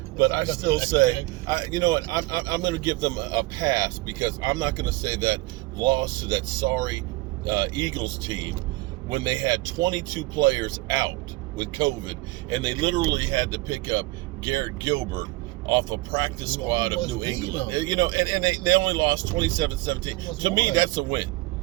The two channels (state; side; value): quieter; left; 20.8 dB